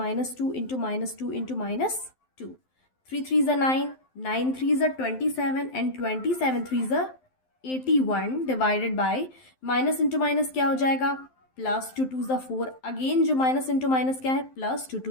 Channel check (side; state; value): right; late; 12 ms